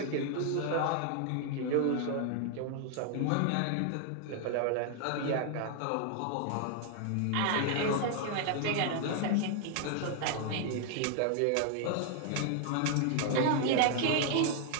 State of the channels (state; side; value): different; both; correlation 0.00